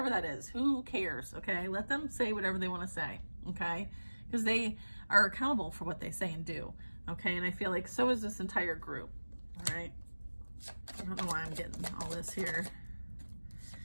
that is. Who cares? Okay, let them say whatever they want to say. Okay, because they are accountable for what they say and do. Okay, and I feel like so is this entire group. All right, I don't know why I'm getting all this here.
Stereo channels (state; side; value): inverted; both; correlation -1.00